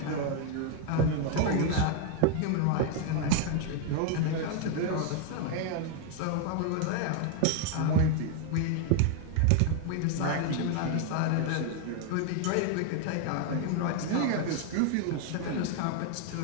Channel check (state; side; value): different; both; correlation 0.00